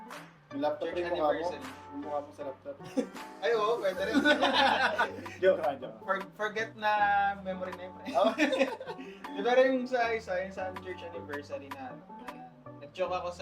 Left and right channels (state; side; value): identical; both; correlation 1.00